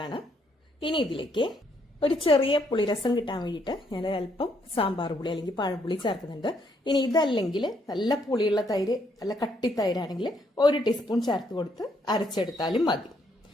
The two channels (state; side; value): normal; both; correlation 0.72